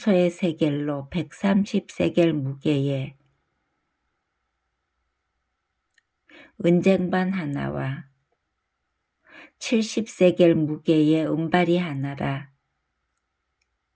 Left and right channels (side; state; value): both; identical; correlation 1.00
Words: 세겔로 130세겔 무게의 은쟁반 하나와 70세겔 무게의 은발이 하나라.